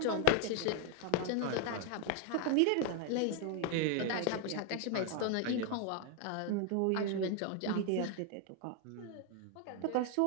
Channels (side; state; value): both; different; correlation 0.00